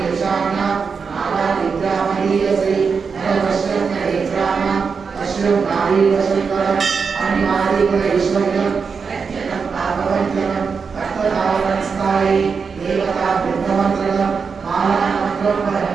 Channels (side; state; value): left; quieter; 5.5 dB